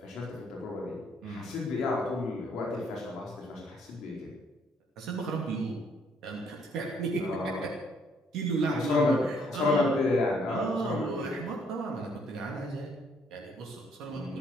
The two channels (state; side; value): normal; both; correlation 0.67